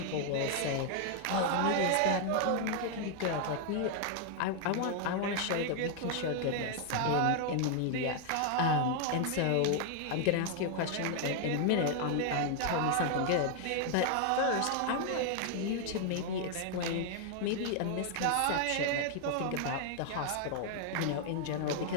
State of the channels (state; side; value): different; both; correlation 0.00